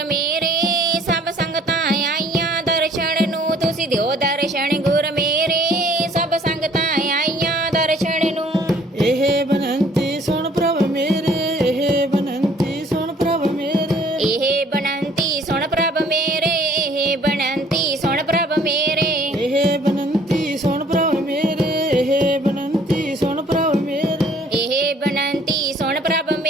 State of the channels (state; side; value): normal; both; correlation 0.57